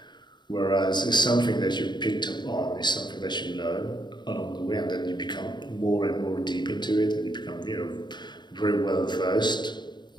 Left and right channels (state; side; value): late; right; 0.21 ms